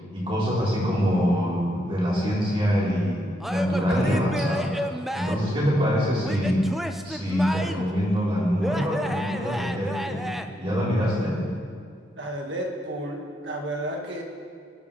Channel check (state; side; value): normal; both; correlation 0.79